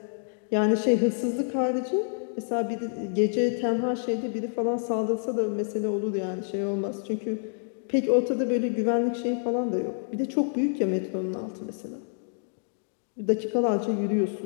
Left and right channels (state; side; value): silent; right; digital silence